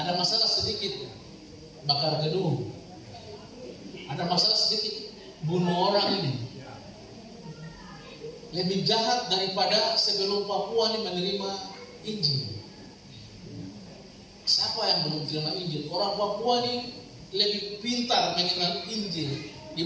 masalah sedikit bakar gedung, ada masalah sedikit bunuh orang ini. Lebih jahat daripada sebelum Papua ini menerima Injil. Siapa yang belum terima Injil? Orang Papua ini lebih pintar mengenal Injil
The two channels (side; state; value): both; identical; correlation 1.00